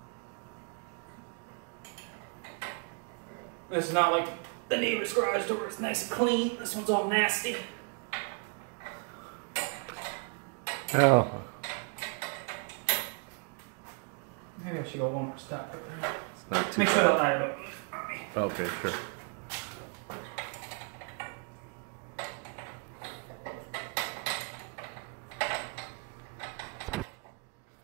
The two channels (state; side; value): quieter; left; 36.7 dB